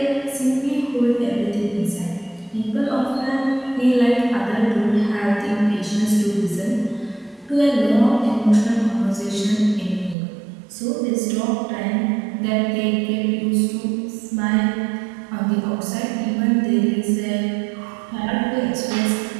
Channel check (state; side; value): drops out; left; at 10.2 s